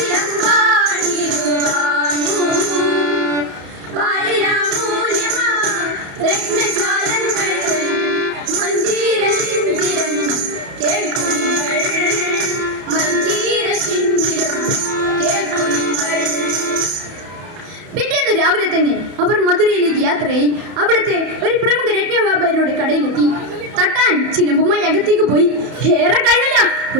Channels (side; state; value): left; late; 31 ms